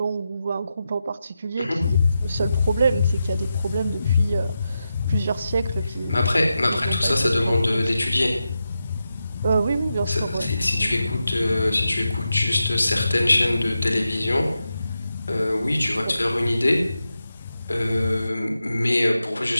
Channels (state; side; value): inverted; both; correlation -0.89